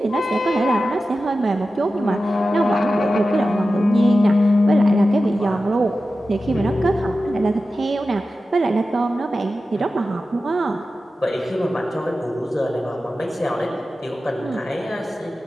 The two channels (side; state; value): both; normal; correlation 0.93